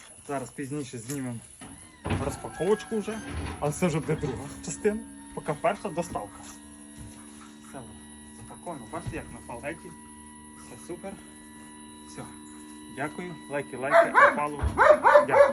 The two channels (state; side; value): identical; both; correlation 1.00